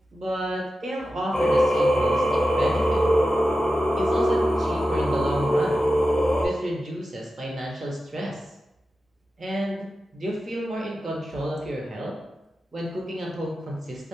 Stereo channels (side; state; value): both; normal; correlation 0.92